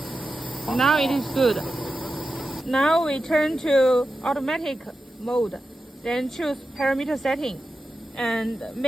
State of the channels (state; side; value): normal; both; correlation 0.91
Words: Now it is good. Now we turn to automatic mode. Then choose parameter setting. And